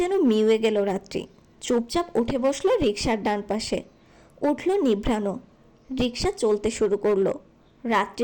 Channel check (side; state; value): both; identical; correlation 1.00